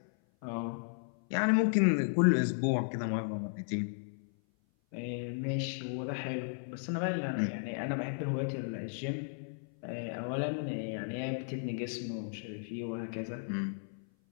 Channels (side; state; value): right; silent; 55 dB below the other